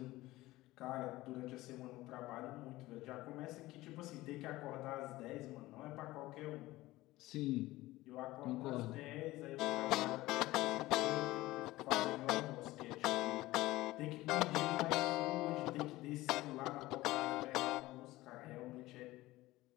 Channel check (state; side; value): quieter; right; 18.1 dB